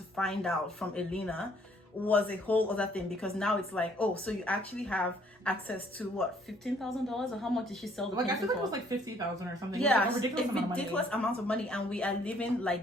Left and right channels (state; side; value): normal; both; correlation 0.63